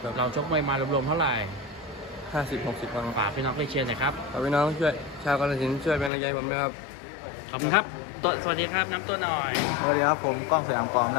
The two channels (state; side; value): drops out; right; at 6.1 s